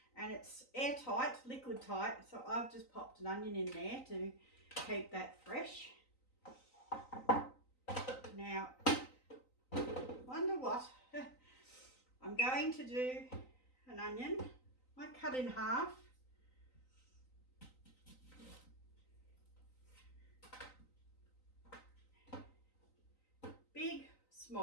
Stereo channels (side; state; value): right; late; 3.9 ms